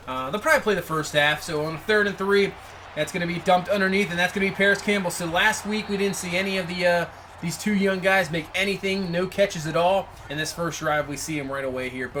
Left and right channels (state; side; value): identical; both; correlation 1.00